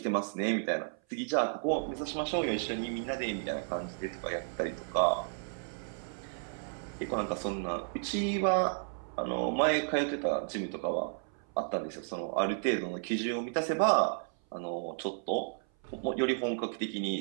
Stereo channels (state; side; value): silent; left; 56 dB below the other